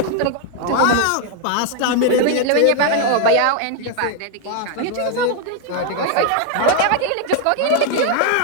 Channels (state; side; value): different; both; correlation 0.01